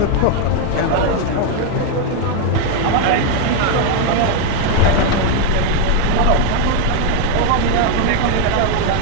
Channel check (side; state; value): both; different; correlation 0.01